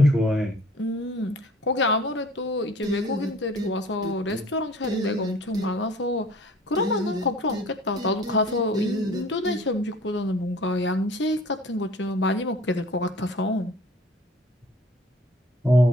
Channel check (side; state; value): both; normal; correlation 0.49